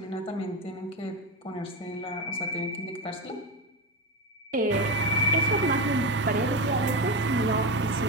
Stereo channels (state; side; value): normal; both; correlation 0.16